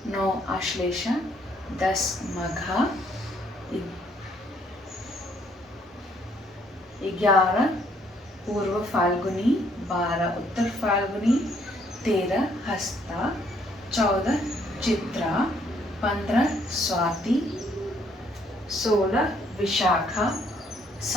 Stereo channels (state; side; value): normal; both; correlation 0.67